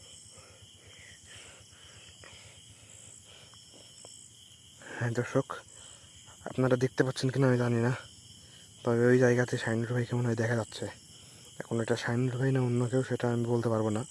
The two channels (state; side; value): identical; both; correlation 1.00